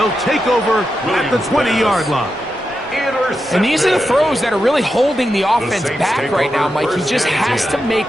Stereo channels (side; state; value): both; normal; correlation 0.88